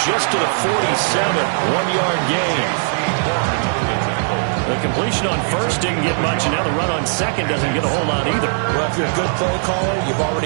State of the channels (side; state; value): left; silent; 67 dB below the other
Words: just to the 47, 1-yard gain. The completion on 1st didn't get much, and now the run on 2nd doesn't get a whole lot either. Well, if you're a good play caller, you've